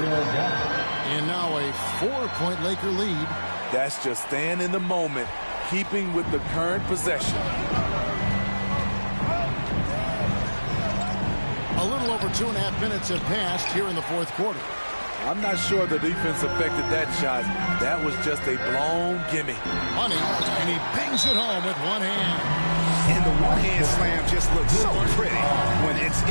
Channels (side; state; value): both; inverted; correlation -1.00